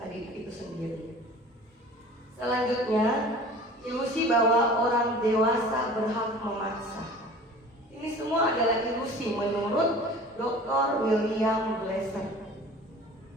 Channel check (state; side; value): normal; both; correlation 0.43